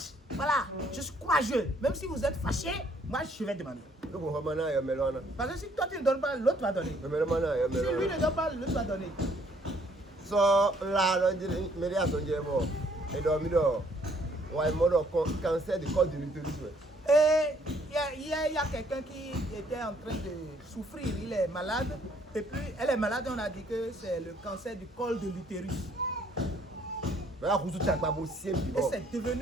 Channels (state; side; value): normal; both; correlation 0.64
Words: Voilà, je suis courageux. Même si vous êtes fâché, moi je vais demander. Donc on va maintenant y melona. Parce que si toi tu ne donnes pas, l'autre va donner. Mais maintenant y Si lui melona. ne donne pas, l'autre va donner. So là là dire mais les attendent bon. Et dormi do. Ouais mode cancer du col de l'utérus. Et il y a quelqu'un qui était en train de souffrir, il est malade. Et puis elle est malade, on a dit que c'est le cancer du col de l'utérus. Mais là vous tout pas possible. Et c'est